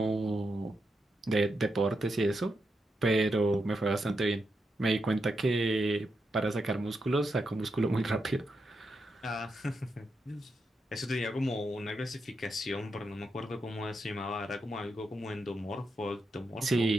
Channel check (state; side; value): normal; both; correlation 0.84